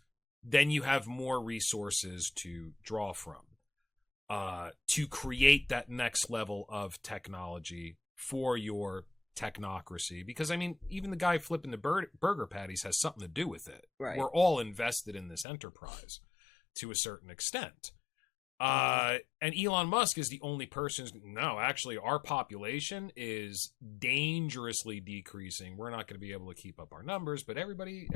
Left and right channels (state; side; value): drops out; right; at 15.5 s